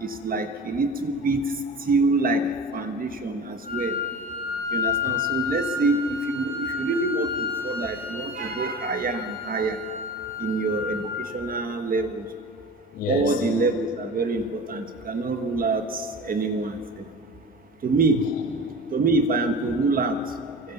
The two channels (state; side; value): normal; both; correlation 0.35